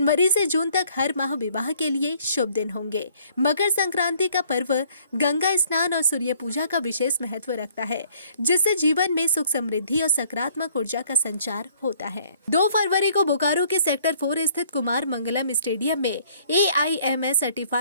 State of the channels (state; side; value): inverted; both; correlation -0.60